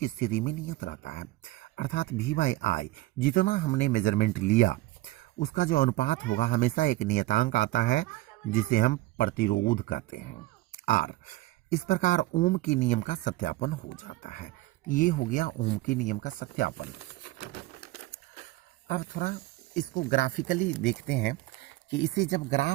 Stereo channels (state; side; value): quieter; left; 18.5 dB